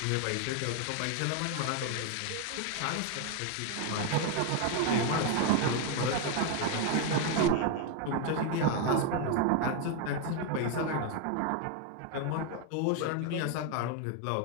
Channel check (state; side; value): different; both; correlation 0.01